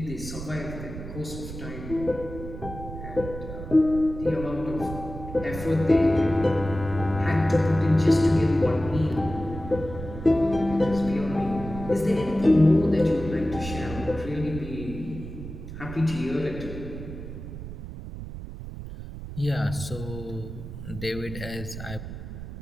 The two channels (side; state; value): right; noise; rumble, 10 dB below the sound